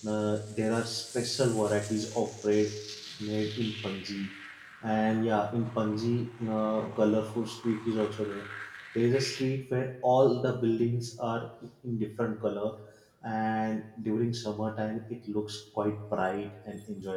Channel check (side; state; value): both; identical; correlation 1.00